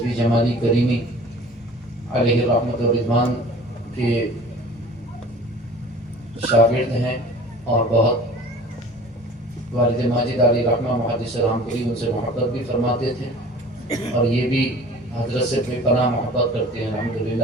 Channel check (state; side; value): normal; both; correlation 0.45